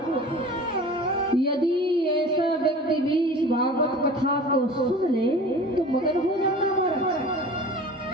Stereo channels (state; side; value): normal; both; correlation 0.40